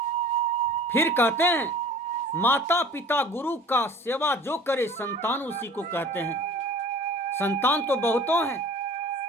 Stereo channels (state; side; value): normal; both; correlation 0.45